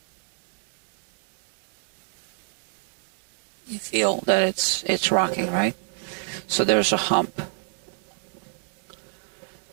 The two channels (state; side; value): silent; left; 60 dB below the other